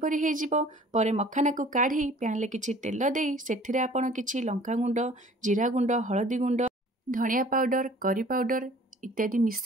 हो मखाना को काढ़ी पैन ले किछि तेल देई सेथिरे आपण किछि लंका गुंड, जीरा गुंड, हळदी गुंड, धनिया पाउडर, करी पाउडर इत्यादि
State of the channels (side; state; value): both; normal; correlation 0.50